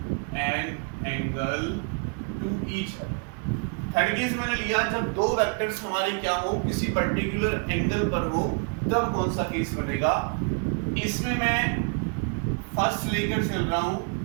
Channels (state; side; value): quieter; left; 36.7 dB